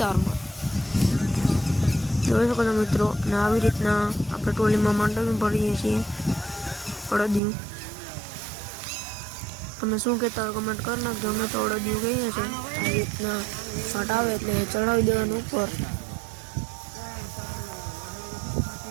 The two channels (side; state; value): left; drops out; at 7.4 s